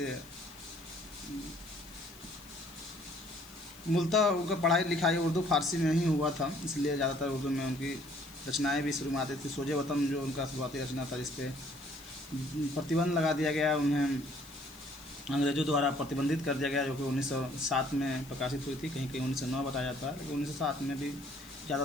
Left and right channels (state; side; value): noise; left; hiss, 21 dB below the sound